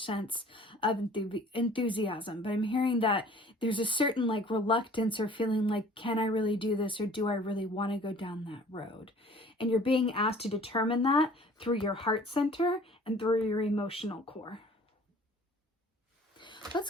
sense of enthusiasm. But I'm hearing that there's a certain reluctance or feeling like, can I really do this, or do I really want to go down that road? And you're being asked to determine that through your heart center and through your emotional core. Let's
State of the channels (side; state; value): both; normal; correlation 0.50